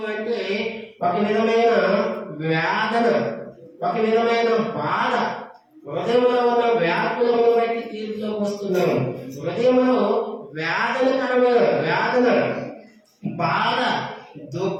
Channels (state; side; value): identical; both; correlation 1.00